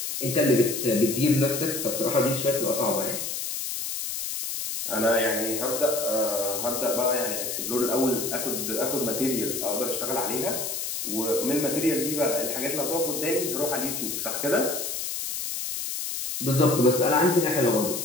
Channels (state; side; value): noise; left; hiss, 4 dB below the sound